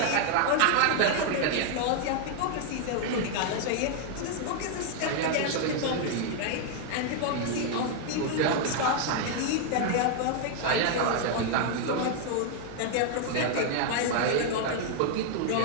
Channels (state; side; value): different; both; correlation 0.00